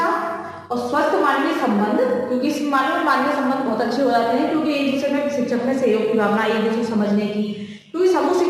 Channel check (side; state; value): both; identical; correlation 1.00